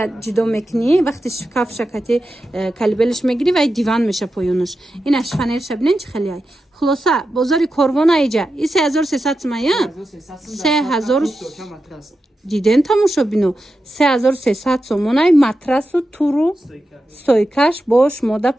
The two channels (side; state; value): both; normal; correlation 0.90